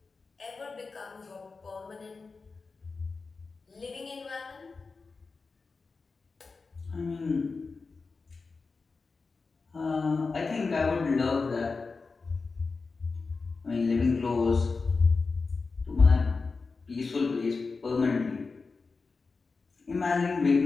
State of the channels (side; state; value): right; quieter; 4.3 dB